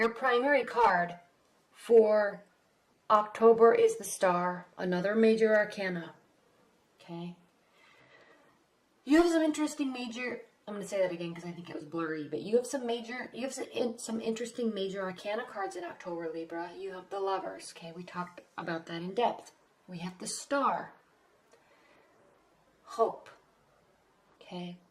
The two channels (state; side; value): identical; both; correlation 1.00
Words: primary card for October is the Star, another major arcana, okay? You have some interesting major, I'm going to say that again because I think it was blurry, but you have some interesting major arcana cards in October, Libra. You have the Lovers, okay? We talked about that in depth. We have the Star, hope, okay?